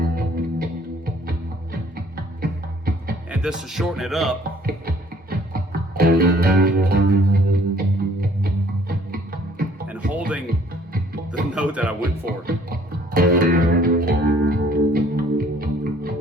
and just to shorten it up, and holding the note that I went for.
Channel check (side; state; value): both; normal; correlation 0.58